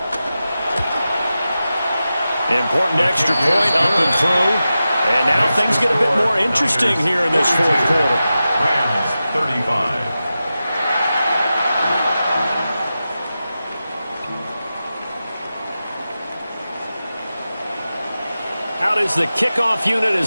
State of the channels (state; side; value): inverted; both; correlation -0.93